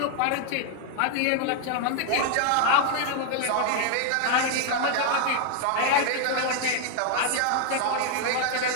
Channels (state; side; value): different; both; correlation 0.00